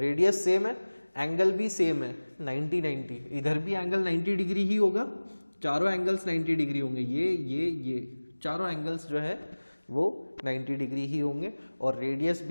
सेम है, एंगल भी सेम है 90-90, इधर भी एंगल 90 डिग्री ही होगा, चारों एंगल्स 90 डिग्री होंगे, ये चारों एंगल्स जो है वो 90 डिग्री ही होंगे, और रेडियस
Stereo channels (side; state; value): both; inverted; correlation -1.00